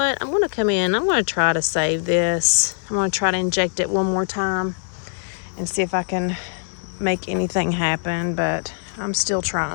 I'm going to come in. I'm going to try to save this. I'm going to try to inject it one more time and see if I can make anything happen, but I'm still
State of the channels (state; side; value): silent; right; 64 dB below the other